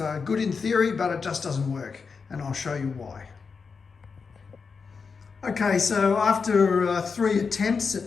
good in theory, but it just doesn't work, and I'll show you why. Okay, so after 3 attempts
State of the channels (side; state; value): right; quieter; 5.3 dB